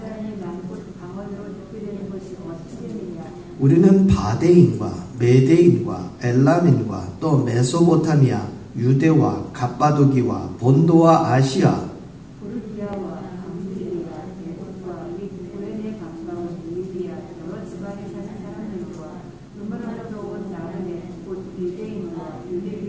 우리는 바데인과 메데인과 엘람인과 또 메소포타미아, 유대와 갑바도기와 본도와 아시아,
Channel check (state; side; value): identical; both; correlation 1.00